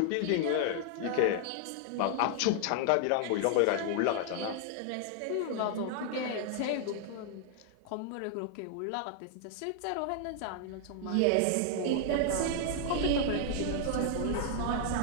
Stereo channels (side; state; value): both; different; correlation 0.00